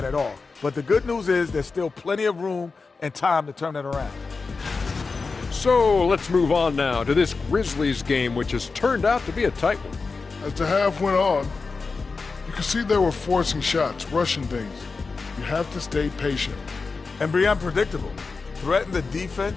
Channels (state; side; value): quieter; right; 4.4 dB